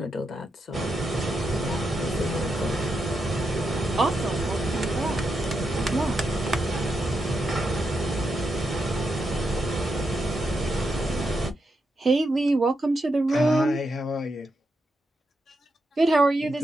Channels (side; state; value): both; normal; correlation 0.84